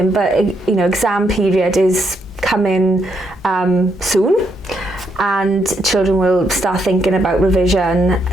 but you know, exam period is coming soon, and children will start thinking about revision,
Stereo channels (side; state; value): both; normal; correlation 0.77